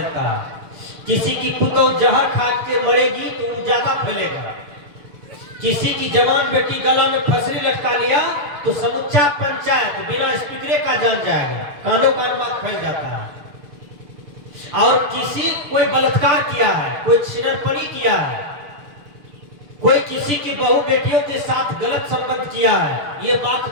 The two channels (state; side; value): late; left; 6.8 ms